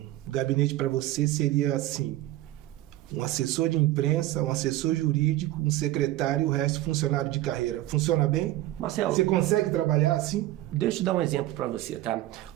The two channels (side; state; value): left; quieter; 15.7 dB